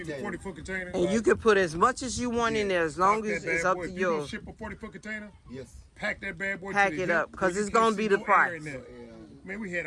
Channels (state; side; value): identical; both; correlation 1.00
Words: the 40-foot container? And you can put as much as you want in there as long Pack as that it's bad up boy. to If you gonna yours. ship a 40-foot container, yes. pack that bad boy. Pack to the it hip, up, 'cause where you it's can't gonna see be the no air price. in there. Man, we had